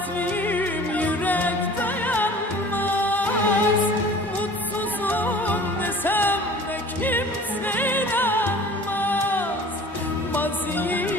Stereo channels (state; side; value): normal; both; correlation 0.45